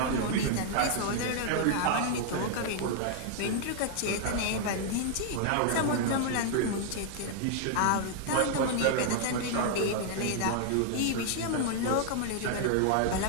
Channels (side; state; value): both; different; correlation 0.00